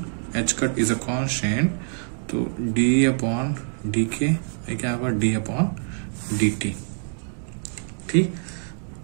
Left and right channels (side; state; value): left; silent; 58 dB below the other